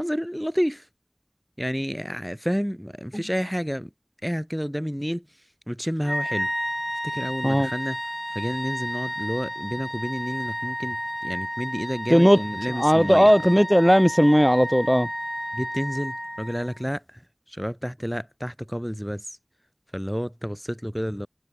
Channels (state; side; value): identical; both; correlation 1.00